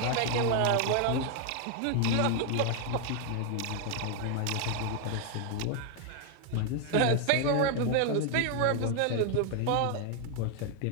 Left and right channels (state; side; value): different; both; correlation 0.00